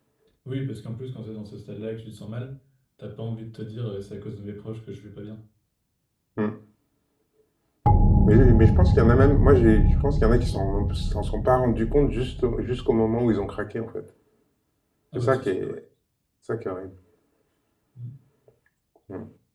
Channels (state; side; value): identical; both; correlation 1.00